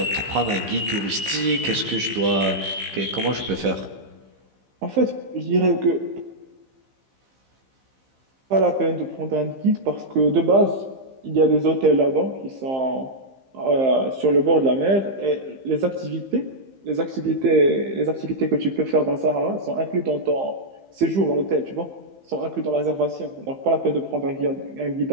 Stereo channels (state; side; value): late; left; 15 ms